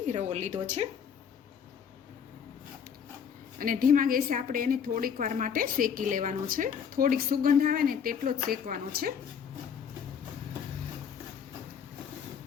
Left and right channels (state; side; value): quieter; right; 7.4 dB